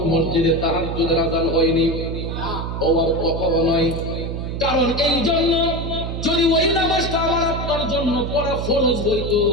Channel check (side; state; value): right; noise; hum, 4 dB below the sound